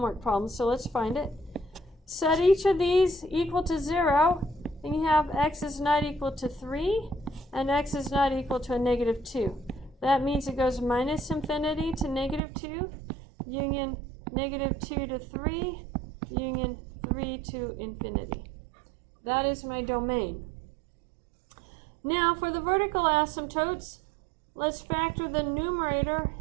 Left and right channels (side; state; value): left; drops out; at 12.4 s